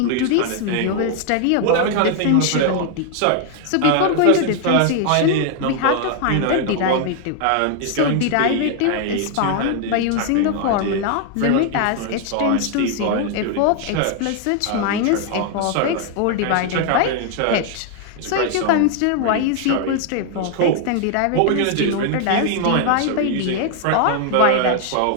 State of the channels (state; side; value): different; both; correlation 0.00